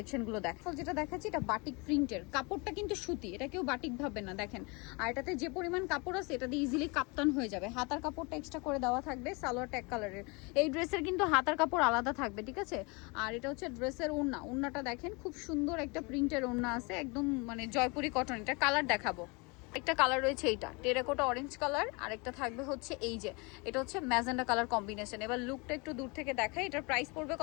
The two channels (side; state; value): right; quieter; 28.9 dB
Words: দেখো। যেটা দেখাচ্ছি এটা বাটিক প্রিন্টের, কাপড়টা কিন্তু সুতি, এটা কেউ বাটিক ভাববে না দেখেন। আর এটাতে যে পরিমাণ কাপড় আছে এটা দিয়ে ইজিলি কাপ্তান হয়ে যাবে। হাতার কাপড়টা এক্সট্রা করে দেওয়া থাকবে, সালোয়ার ট্যাগ কালারের। এই ড্রেসের কিন্তু হাতার কাপড় আলাদা থাকবে, ঠিক আছে। আর এটা হচ্ছে ড্রেসের ওড়না, ওড়নাটা দেখেন খুব সুন্দর একটা প্রিন্টের ওড়না আছে, একদম মানে জয়পুরি কটন। এটা কালার দেখাবো, একটা কালার রয়েছে এইটা টেরাকোটা অরেঞ্জ কালার, আর একটা থাকবে হচ্ছে এই যে এটা হচ্ছে ম্যাজেন্ডা কালার কম্বিনেশন। এবার লুকটা একটু দূর থেকে দেখাই। এটার প্রাইস পড়বে